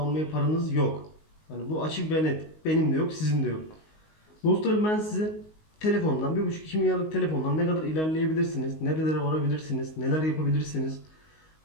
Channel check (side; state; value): right; late; 19 ms